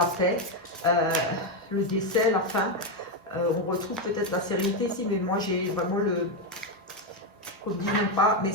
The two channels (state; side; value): normal; both; correlation 0.06